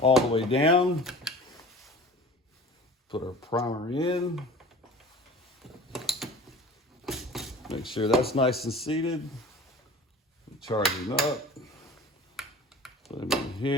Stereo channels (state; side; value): normal; both; correlation 0.42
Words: the way down. Put our primer in. Make sure that's nice and seated. Charge him up. Put him in